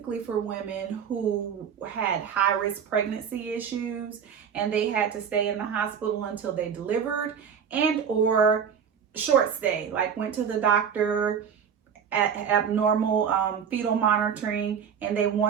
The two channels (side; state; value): left; quieter; 7.4 dB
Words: for women who had high-risk pregnancy issues and they had to stay in the hospital until they delivered and or short stay, like went to the doctor at abnormal fetal monitoring and they